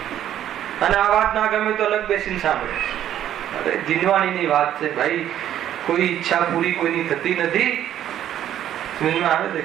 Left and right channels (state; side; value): quieter; left; 11.2 dB